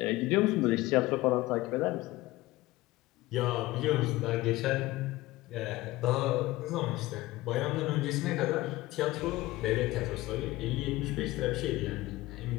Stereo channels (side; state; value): right; quieter; 18.6 dB